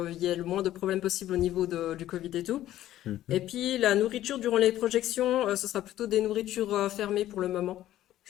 y ait le moins de problèmes possible au niveau du Covid et tout. mhm, Et puis la nourriture durant les projections, ce sera plutôt des nourritures fermées pour le moment,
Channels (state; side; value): quieter; right; 13.4 dB